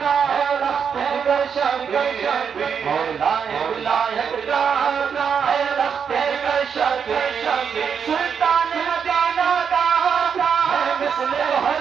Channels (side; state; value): left; quieter; 6.9 dB